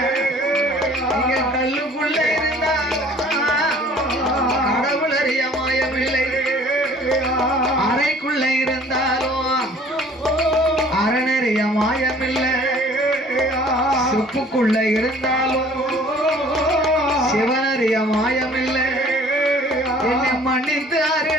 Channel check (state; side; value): normal; both; correlation 0.52